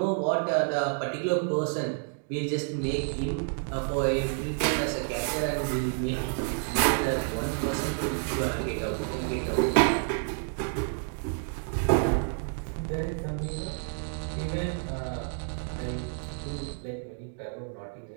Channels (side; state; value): left; silent; 56 dB below the other